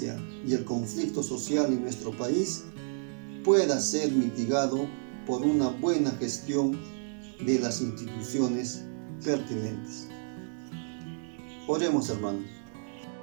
y el conflicto social en nuestro país pueda ser mitigado por una buena gestión de las instituciones pertinentes. Oremos, hermanos.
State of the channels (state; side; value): silent; left; digital silence